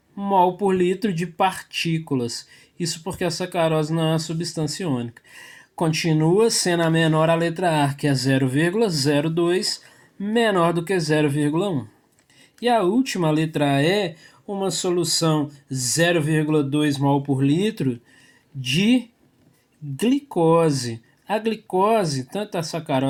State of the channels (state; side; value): identical; both; correlation 1.00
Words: mol por litro de partículas. Isso porque a sacarose não é uma substância iônica. Continua sendo a menor a letra A, que é 0,02, menor do que 0,1. E a última, a letra E, uma solução 0,2 mol por litro de glicose. A glicose, tanto a